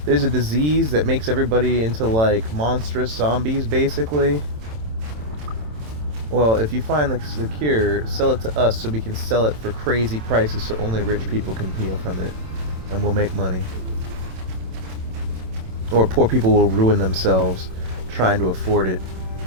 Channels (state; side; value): late; left; 27 ms